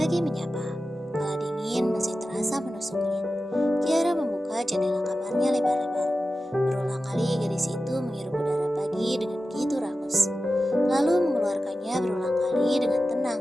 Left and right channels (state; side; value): normal; both; correlation 0.93